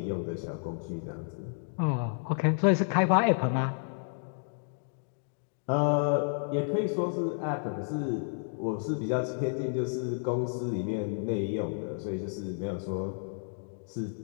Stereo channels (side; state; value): right; silent; digital silence